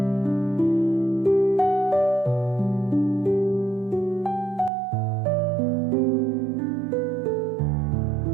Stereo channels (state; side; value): drops out; left; at 4.7 s